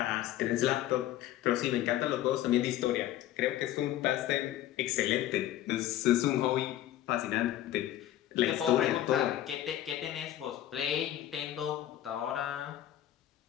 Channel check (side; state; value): right; quieter; 13.0 dB